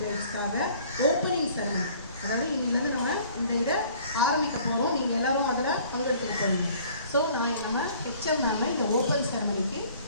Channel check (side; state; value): both; inverted; correlation -0.54